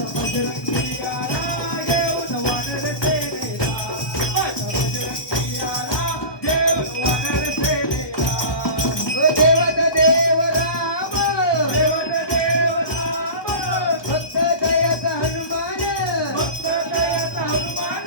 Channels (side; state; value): right; late; 1.3 ms